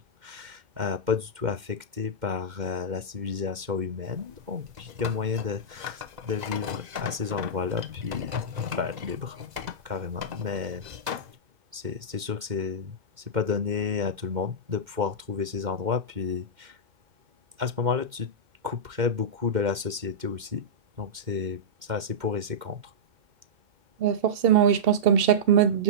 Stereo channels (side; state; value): left; late; 2.1 ms